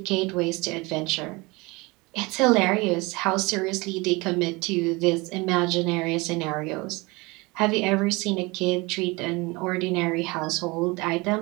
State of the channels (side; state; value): left; quieter; 24.7 dB